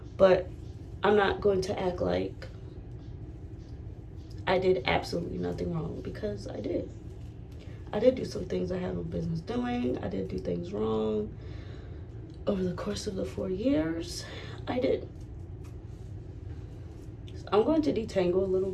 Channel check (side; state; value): both; identical; correlation 1.00